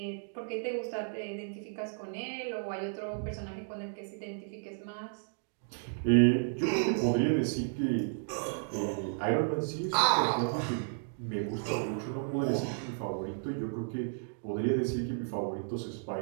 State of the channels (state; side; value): silent; left; digital silence